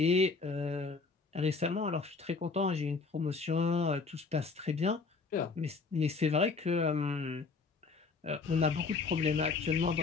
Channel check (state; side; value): quieter; right; 4.4 dB